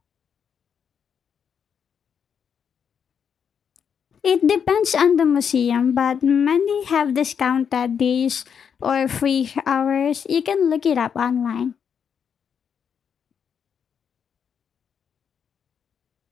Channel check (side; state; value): right; quieter; 7.3 dB